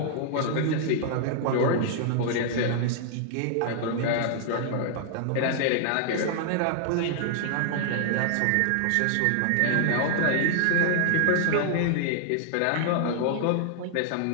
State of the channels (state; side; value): different; both; correlation -0.01